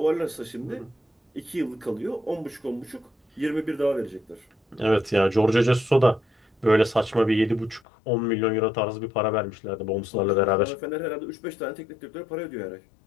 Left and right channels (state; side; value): drops out; right; at 7.8 s